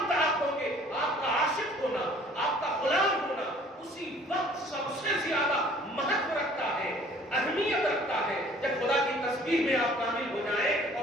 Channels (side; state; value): both; normal; correlation 0.54